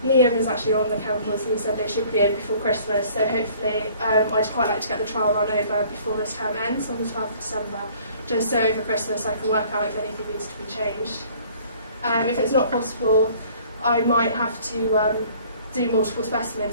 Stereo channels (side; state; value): both; inverted; correlation -0.54